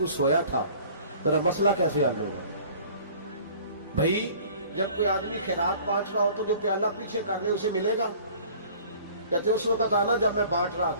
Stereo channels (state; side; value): inverted; both; correlation -0.49